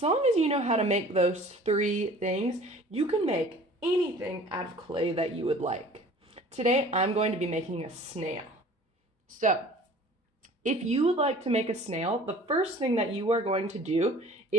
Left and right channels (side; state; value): both; normal; correlation 0.47